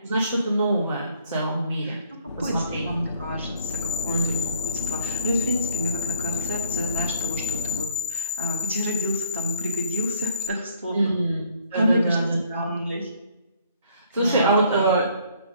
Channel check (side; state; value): both; inverted; correlation -0.62